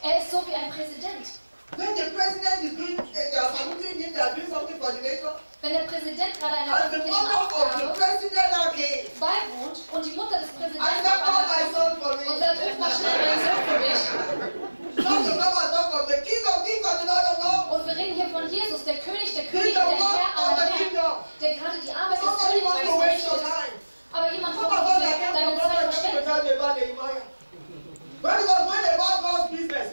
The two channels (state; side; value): inverted; both; correlation -1.00